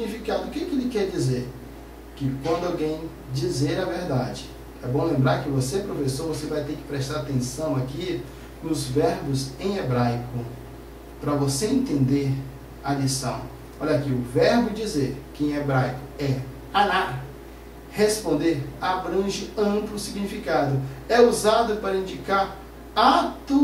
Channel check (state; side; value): identical; both; correlation 1.00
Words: O que ele quer dizer? Que quando alguém dizer a verdade. É bom lembrar que você, professor, você vai ter que prestar atenção aqui nos verbos em hebraico, para você entender a lição. Olha aqui, o verbo dizer, que em hebraico é anar, responder, abrange amplo significado. É usado para indicar